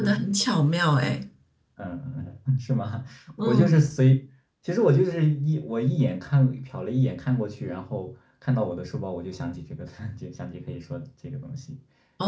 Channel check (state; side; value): identical; both; correlation 1.00